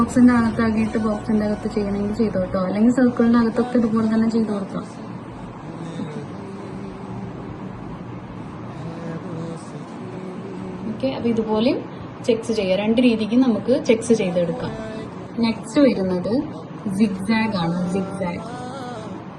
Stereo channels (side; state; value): both; identical; correlation 1.00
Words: അകത്താക്കിയിട്ട് ബോക്സിന്റെ അകത്ത് ചെയ്യണമെങ്കിൽ ചെയ്തു കേട്ടോ, അല്ലെങ്കിൽ സർക്കിളിന്റെ അകത്തൊക്കെ ഇതുപോലെ തന്നെ ചെയ്ത് കൊടുക്കാം. ഓക്കെ, അപ്പൊ ഇതുപോലെ ചെക്സ് ചെയ്യാം. രണ്ട് രീതിക്ക് നമുക്ക് ചെക്സ് ചെയ്തെടുക്കാം. നെക്സ്റ്റ് വരുന്നത് സിഗ്സാഗ് ആണ്.